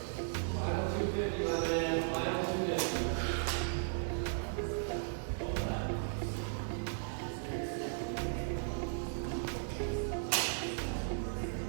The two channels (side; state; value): left; silent; digital silence